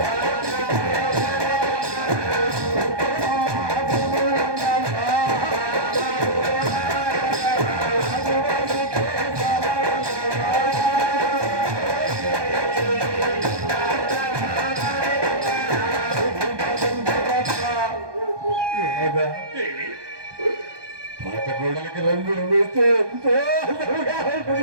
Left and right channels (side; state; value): left; late; 1.2 ms